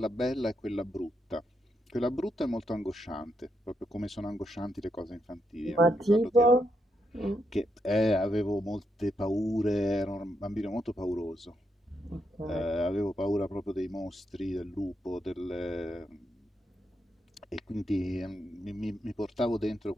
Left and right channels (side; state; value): both; normal; correlation 0.81